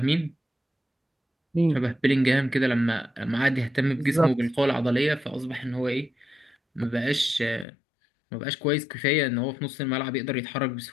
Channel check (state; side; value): drops out; right; at 7.7 s